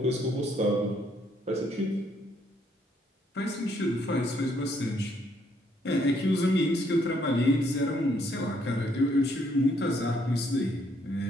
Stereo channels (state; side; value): normal; both; correlation 0.70